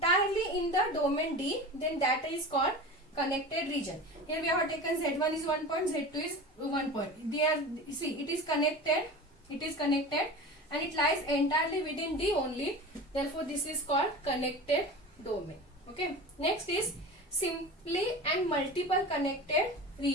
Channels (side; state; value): both; normal; correlation 0.32